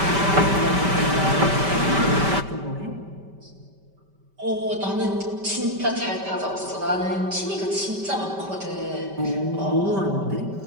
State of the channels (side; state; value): left; late; 5.1 ms